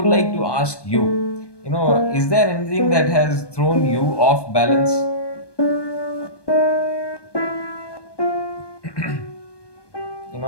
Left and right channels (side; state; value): right; late; 1.2 ms